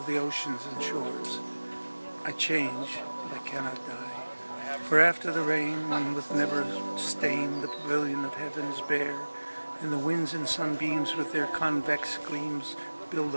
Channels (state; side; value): inverted; both; correlation -1.00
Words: the oceans and shores. I change, but I cannot die. For after the rain, when with never stain the pavilion of heaven is bare, and the winds and sunbeams with their convex gleams build